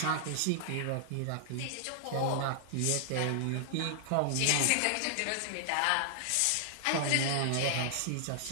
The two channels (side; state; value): both; different; correlation -0.01